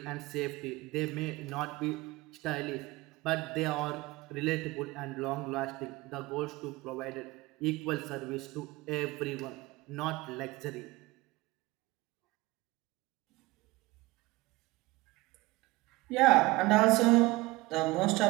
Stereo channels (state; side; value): quieter; left; 20.8 dB